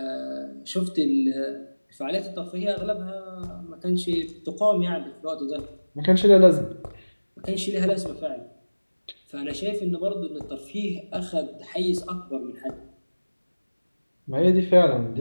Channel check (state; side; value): inverted; both; correlation -1.00